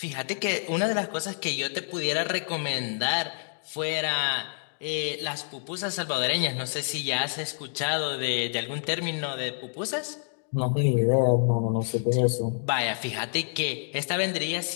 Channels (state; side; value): silent; right; digital silence